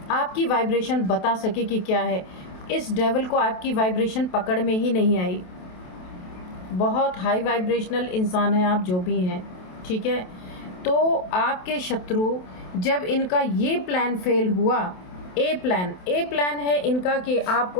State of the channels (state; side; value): late; right; 27 ms